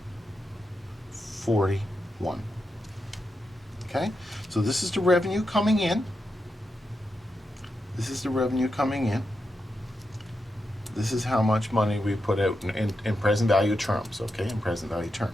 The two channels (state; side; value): normal; both; correlation 0.87